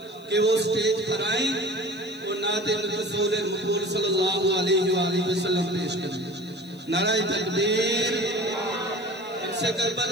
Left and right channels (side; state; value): left; noise; hiss, 28 dB below the sound